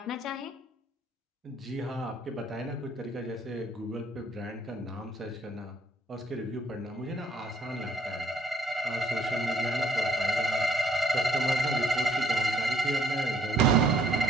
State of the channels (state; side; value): normal; both; correlation 0.65